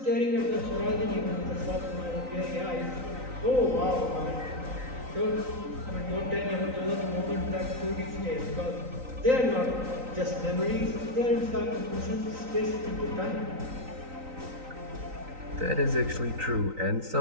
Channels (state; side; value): late; left; 3.9 ms